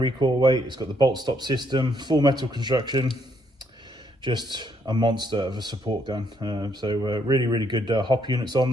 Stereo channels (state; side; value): normal; both; correlation 0.72